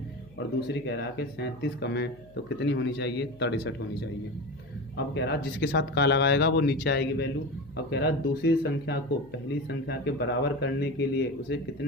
और दूसरी कह रहा है कि 37 कम है तो कितनी होनी चाहिए, 63 होनी चाहिए। अब कह रहा जिसके साथ का लगाएगा वो नीचे आएगी वैल्यू। अब कह रहा दूसरी संख्या को पहली संख्या के बराबर करने के लिए उसे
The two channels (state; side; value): noise; left; hum, 24 dB below the sound